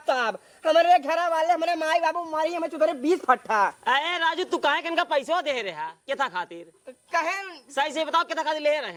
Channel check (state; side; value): identical; both; correlation 1.00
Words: तब हमारे घरा वाले हमारे माई बाबू मारी हमें चुदरे 20 फट्टा। अरे राजू तू कहे किनका पैसा दे रहा केथा खातिर? कहें सही से बताओ केथा खातिर ले